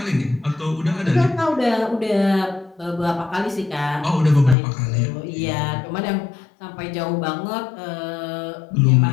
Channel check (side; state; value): right; drops out; at 4.5 s